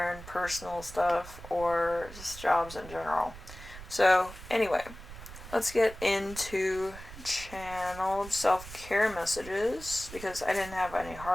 personal stuff, or just jobs in general. So, anyway, let's get into channeled self-care messages, because I didn't have any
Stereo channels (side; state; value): right; noise; rumble, 14 dB below the sound